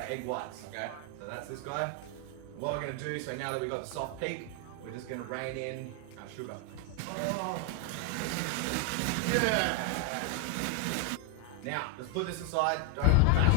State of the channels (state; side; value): different; both; correlation 0.01